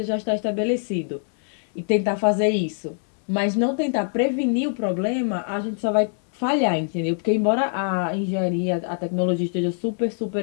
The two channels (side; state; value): right; silent; 63 dB below the other